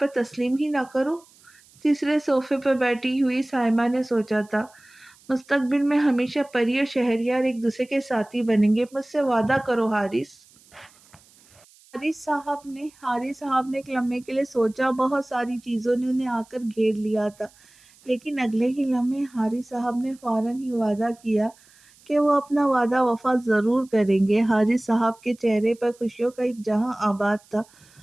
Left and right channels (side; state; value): right; noise; hiss, 28 dB below the sound